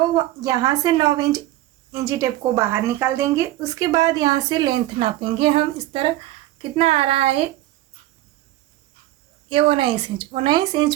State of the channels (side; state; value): left; quieter; 15.5 dB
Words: यहाँ से 9 इंच इंची टेप को बाहर निकाल देंगे। उसके बाद यहाँ से लेंथ नापेंगे हम इस तरह, कितना आ रहा है ये 19 इंच। 19 इंच